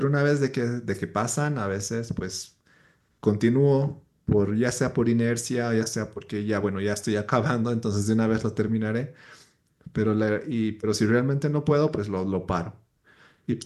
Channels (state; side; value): identical; both; correlation 1.00